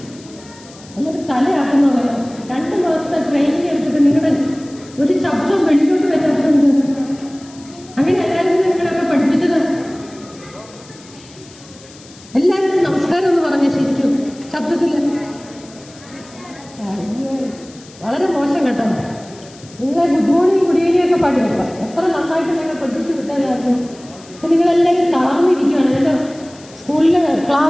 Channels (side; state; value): left; noise; hiss, 22 dB below the sound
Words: ഒന്നൊരു തലയാക്കുന്നുള്ളത്. 2 മാസത്തെ training എടുത്തിട്ട് നിങ്ങളുടെ ഒരു ശബ്ദം വെളിയിലോട്ട് വരാത്തുണ്ട്. അങ്ങനെ എല്ലാവരും നിങ്ങളൊക്കെ പഠിപ്പിച്ചത്. എല്ലാവരും നമസ്കാരം എന്ന് പറഞ്ഞ ശരിക്കും ശബ്ദത്തിൽ വളരെ മോശം കേട്ടോ. നിങ്ങളെ ഗുഡ് മോർണിംഗ് ഗുഡ് ഈവനിങ് ഒക്കെ പാടി വെക്കാം. എത്ര നന്നായിട്ട് നിങ്ങൾ പഠിപ്പിച്ച് വിട്ടതായിരുന്നു. അപ്പം നിങ്ങളെല്ലാവരും തളർന്നിരിക്കുകയാണ്. എൻ്റെ സ്കൂളിൽ